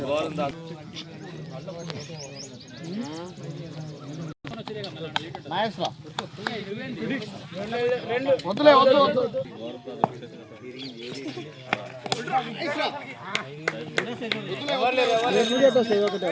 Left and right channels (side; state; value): both; identical; correlation 1.00